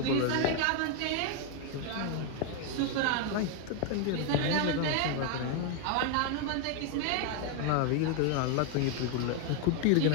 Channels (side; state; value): both; different; correlation 0.00